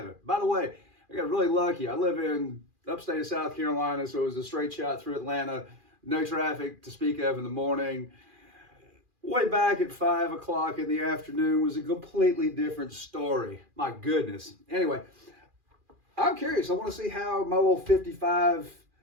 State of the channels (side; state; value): left; late; 2.4 ms